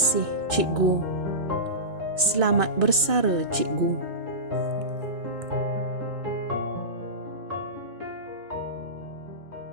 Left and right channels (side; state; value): left; late; 2.6 ms